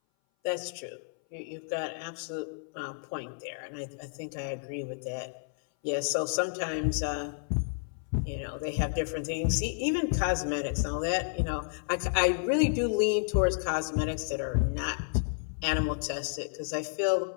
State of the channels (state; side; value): silent; right; 57 dB below the other